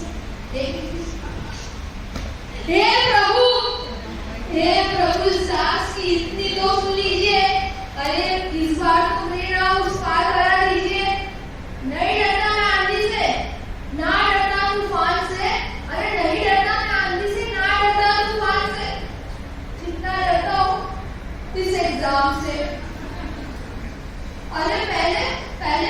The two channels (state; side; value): identical; both; correlation 1.00